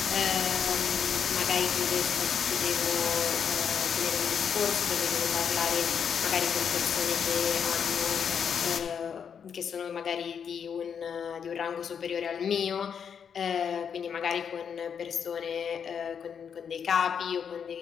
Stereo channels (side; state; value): right; quieter; 7.3 dB